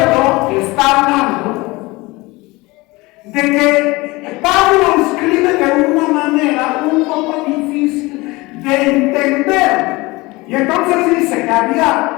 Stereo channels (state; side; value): quieter; right; 22.5 dB